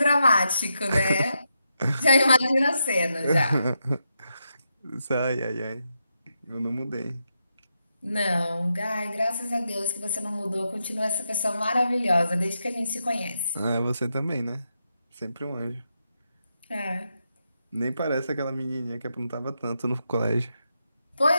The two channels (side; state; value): both; inverted; correlation -0.84